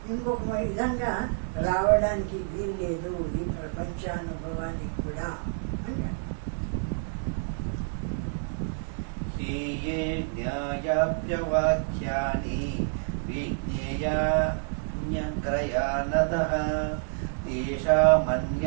ఇంకొక విధంగా రావడానికి వీల్లేదు ఈ ప్రపంచానుభవానికి కూడా అంటే. హీయే జ్ఞాయాప్యవాక్యాని విజ్ఞేయాన్యగ్రయానతః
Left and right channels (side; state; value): left; silent; digital silence